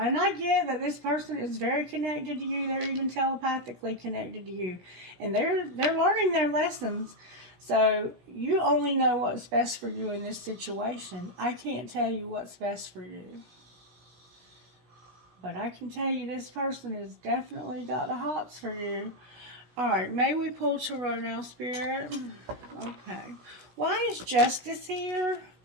And I get that this person is very connected to you. They're even telepathically connected to you, and they're learning their lessons. So you only know what's best for you in this situation. I can't tell you what's best for you, but I can tell you this person has definitely got the hots for you. All right, may we pull Tarot now, Spirit? Okay. Why is Justice here?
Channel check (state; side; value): late; left; 16 ms